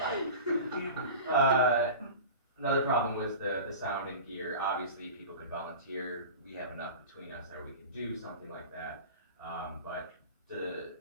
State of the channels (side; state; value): both; inverted; correlation -0.33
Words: Another problem was the sound and gear. Obviously, people could volunteer. We have enough between us that we could do something like that. But